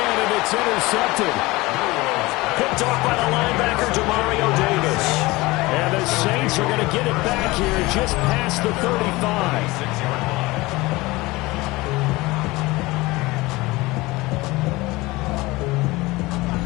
and it's intercepted. Picked off by the linebacker, Demario Davis. And the Saints are going to get it back here just past the 35.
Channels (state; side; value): quieter; right; 21.3 dB